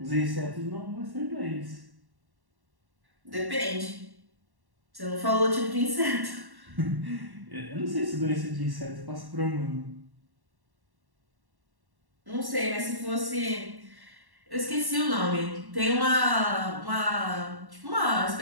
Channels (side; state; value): left; late; 1.1 ms